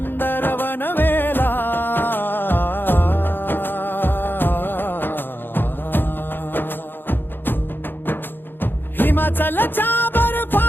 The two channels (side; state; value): right; late; 0.098 ms